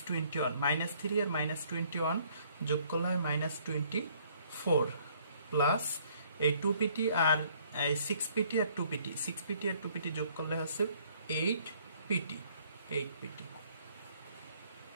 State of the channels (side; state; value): both; inverted; correlation -0.62